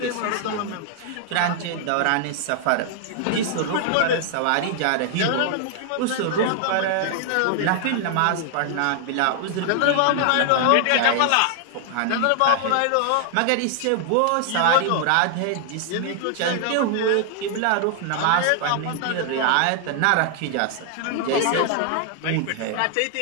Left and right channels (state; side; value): different; both; correlation 0.00